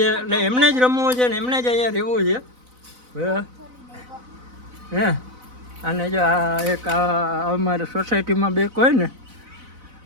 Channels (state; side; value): late; left; 4.0 ms